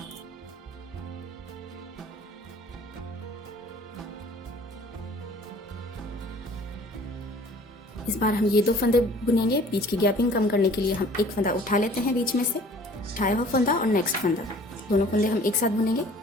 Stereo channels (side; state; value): both; normal; correlation 0.51